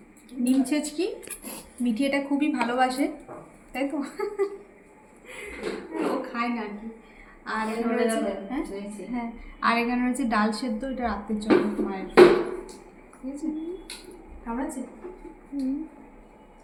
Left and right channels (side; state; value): both; identical; correlation 1.00